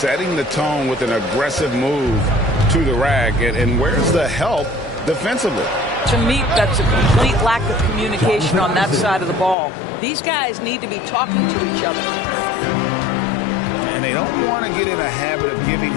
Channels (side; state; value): right; drops out; at 9.6 s